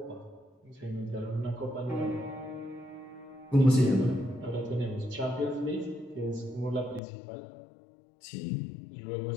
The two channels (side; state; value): right; drops out; at 7.0 s